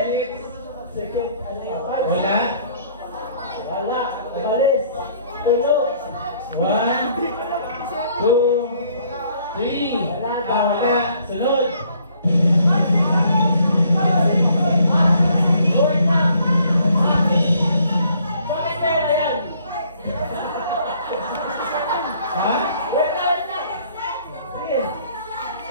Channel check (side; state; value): both; inverted; correlation -0.62